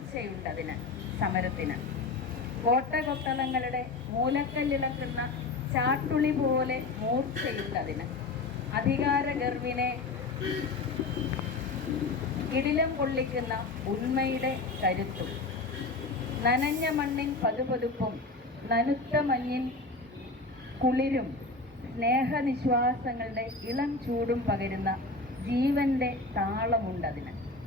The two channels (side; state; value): right; quieter; 3.5 dB